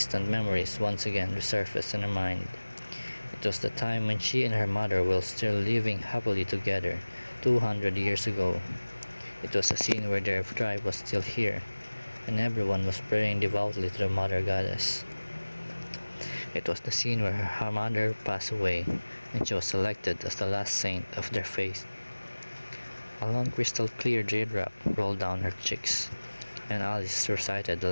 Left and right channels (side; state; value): both; inverted; correlation -1.00